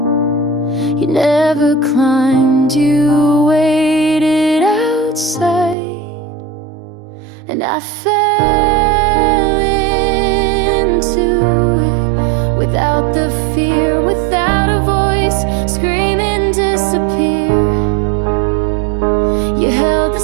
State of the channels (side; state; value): left; drops out; at 5.8 s